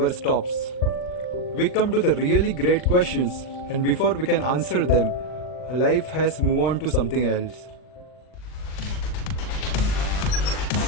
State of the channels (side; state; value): right; late; 39 ms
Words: stops. We come to the really great questions, and before we can answer them, life has moved on to something else.